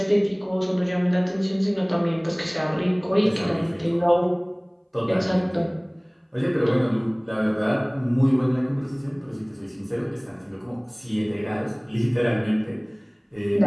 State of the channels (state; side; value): identical; both; correlation 1.00